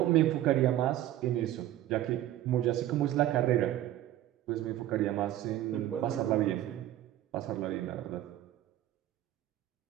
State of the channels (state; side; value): quieter; left; 13.4 dB